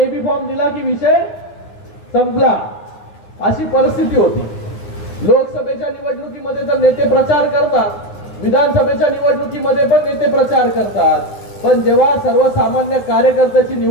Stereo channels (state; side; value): late; right; 9.5 ms